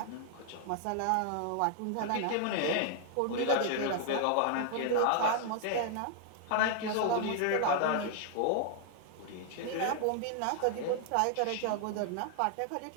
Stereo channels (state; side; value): different; both; correlation 0.00